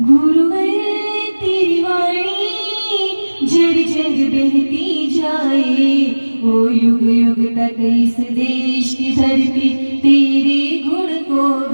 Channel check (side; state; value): both; inverted; correlation -1.00